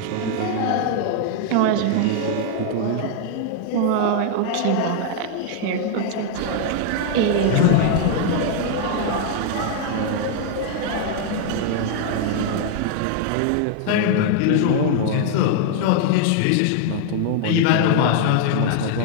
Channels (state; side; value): different; both; correlation 0.00